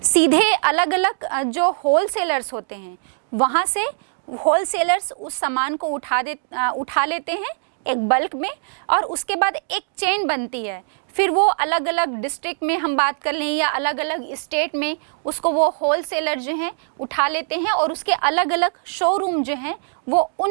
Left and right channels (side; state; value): left; silent; digital silence